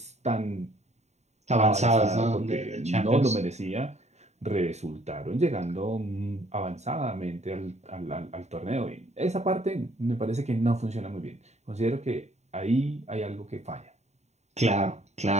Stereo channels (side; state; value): left; late; 0.32 ms